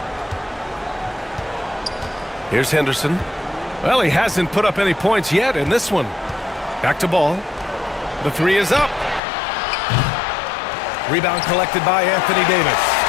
Here's Henderson. Well, he hasn't put up any points yet in this one. Back to ball. The three is up. Rebound collected by Anthony Davis.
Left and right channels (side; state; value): right; drops out; at 9.2 s